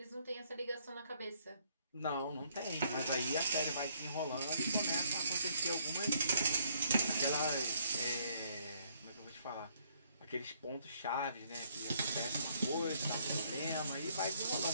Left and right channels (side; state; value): both; inverted; correlation -0.68